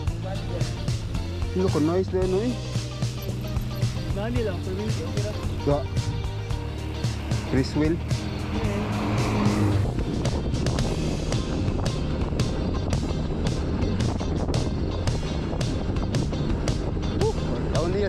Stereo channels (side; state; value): both; identical; correlation 1.00